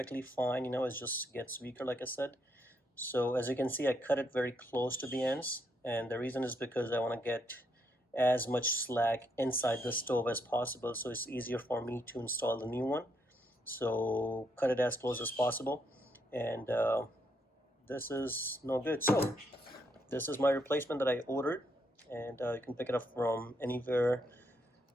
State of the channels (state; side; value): normal; both; correlation 0.76